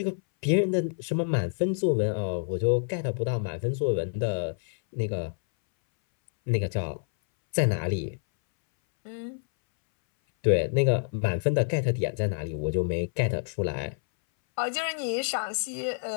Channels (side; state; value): right; silent; 60 dB below the other